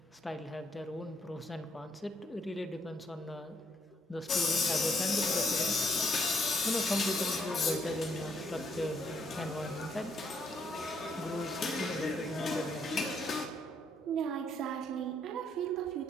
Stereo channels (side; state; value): both; normal; correlation 0.72